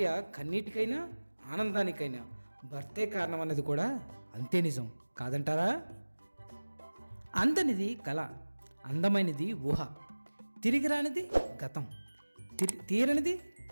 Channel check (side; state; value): both; inverted; correlation -1.00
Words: కన్నీటికైనా ఆనందానికైనా భర్తే కారణం అన్నది కూడా అంతే నిజం కాదంటారా? అందనిది కళ, అందమైనది ఊహ, తిరిగి రానిది గతం, తీరనిది